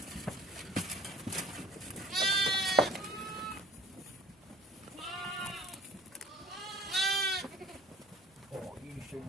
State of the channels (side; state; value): both; normal; correlation 0.49